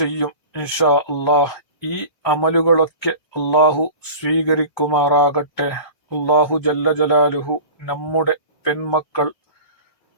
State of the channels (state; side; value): late; right; 1.2 ms